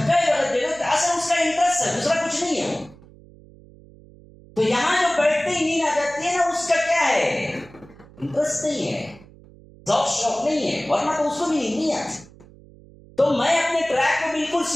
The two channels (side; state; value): right; noise; hum, 23 dB below the sound